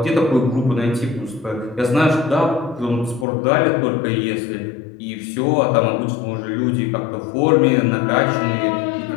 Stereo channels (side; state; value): right; drops out; at 3.2 s